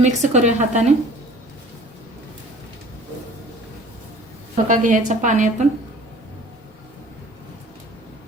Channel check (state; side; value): normal; both; correlation 0.48